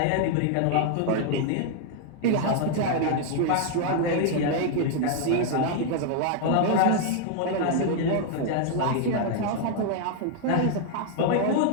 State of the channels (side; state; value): both; different; correlation 0.00